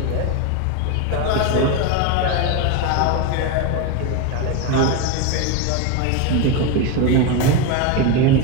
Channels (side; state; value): both; different; correlation 0.03